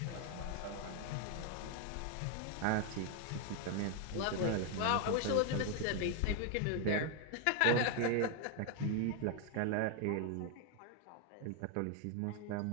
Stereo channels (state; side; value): different; both; correlation 0.00